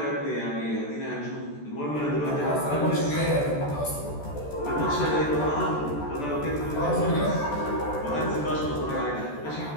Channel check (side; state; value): right; late; 14 ms